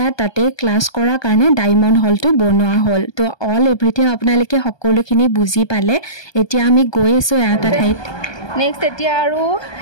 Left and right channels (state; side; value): late; right; 1.2 ms